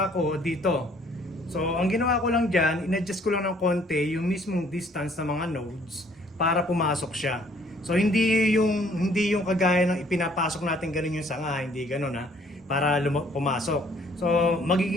ko dito. So, ang ginawa ko lang dyan, in-adjust ko lang ng konti yung mismong distance ng mga nodes para pumasok siya. So, hindi yung kagaya ng ipinapasok natin ganun yung sanga, hindi ganun ha, para pumasok. So,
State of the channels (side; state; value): both; normal; correlation 0.61